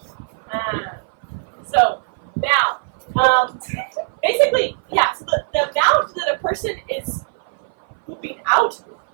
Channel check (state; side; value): silent; left; 58 dB below the other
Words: So now, basically, yeah. So the amount that a person is pooping out,